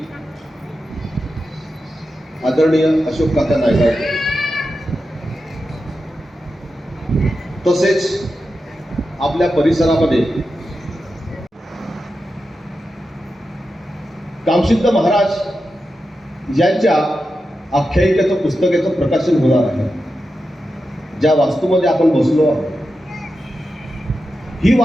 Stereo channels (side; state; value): both; normal; correlation 0.90